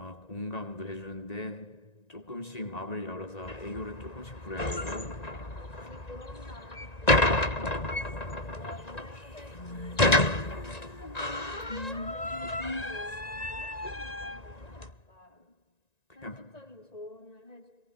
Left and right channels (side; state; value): right; late; 1.9 ms